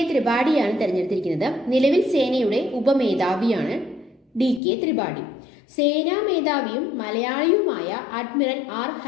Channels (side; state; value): right; drops out; at 4.6 s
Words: ത്രിപാഠിയാണ് തെരഞ്ഞെടുത്തിരിക്കുന്നത്. നിലവിൽ സേനയുടെ ഉപമേധാവിയാണ് DK ത്രിപാഠി. സേനാ മേധാവിയും മലയാളിയുമായ അഡ്മിറൽ R